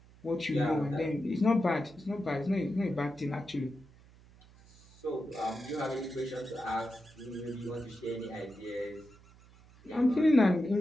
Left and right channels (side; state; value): right; noise; hum, 24 dB below the sound